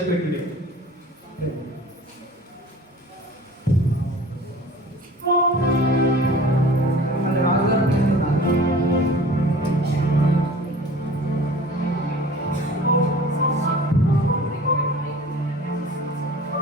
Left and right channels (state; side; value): normal; both; correlation 0.44